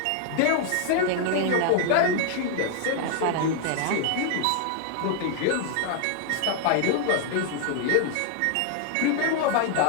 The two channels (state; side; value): different; both; correlation 0.00